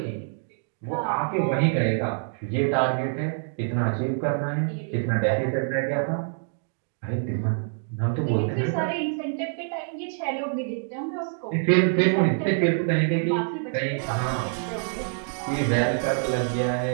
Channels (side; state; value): left; silent; digital silence